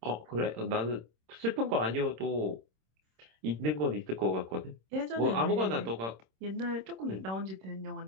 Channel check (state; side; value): late; left; 26 ms